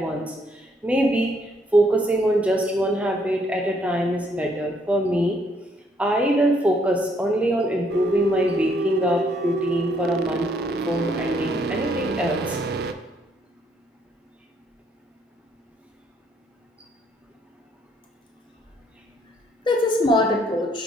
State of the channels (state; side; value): normal; both; correlation 0.69